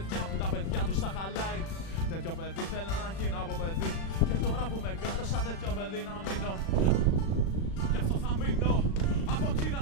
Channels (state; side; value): late; right; 36 ms